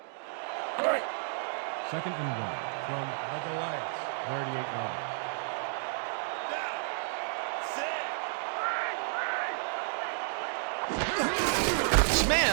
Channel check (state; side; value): silent; left; digital silence